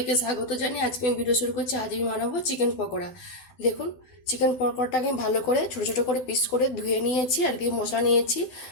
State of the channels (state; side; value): late; right; 12 ms